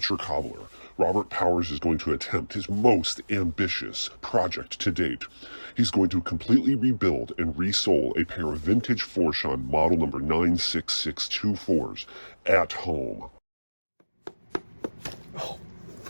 Cobbler, Robert Powers is going to attempt his most ambitious project to date. He's going to completely rebuild and resole a pair of vintage Florsheim model number 96624s at home. Oh,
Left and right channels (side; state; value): both; inverted; correlation -1.00